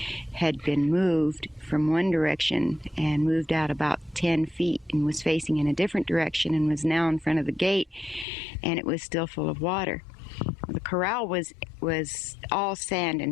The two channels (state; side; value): drops out; right; at 8.2 s